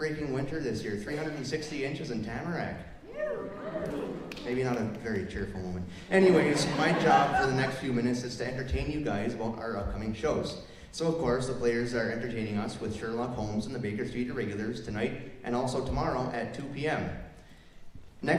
winter this year, 360 inches in Tamarack. Maybe not a very cheerful moment. Anyways, my job for the next few minutes is to entertain you guys about our upcoming shows. So, of course, the Players are entertaining us with Sherlock Holmes and the Baker Street Irregulars tonight and also tomorrow at 2 p.m.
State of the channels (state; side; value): identical; both; correlation 1.00